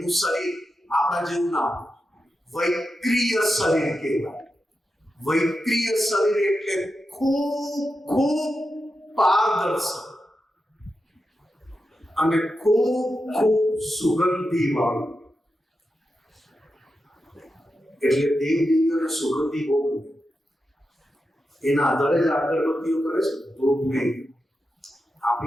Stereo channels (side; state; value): both; normal; correlation 0.89